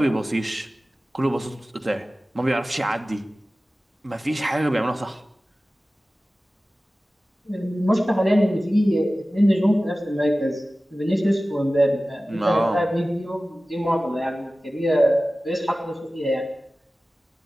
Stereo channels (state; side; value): normal; both; correlation 0.96